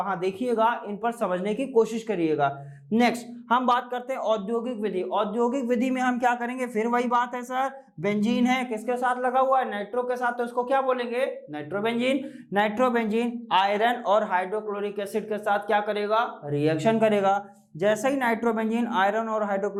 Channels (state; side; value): identical; both; correlation 1.00